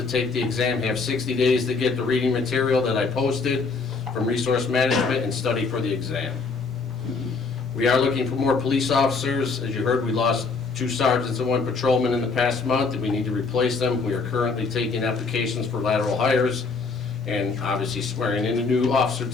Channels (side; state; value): right; quieter; 4.4 dB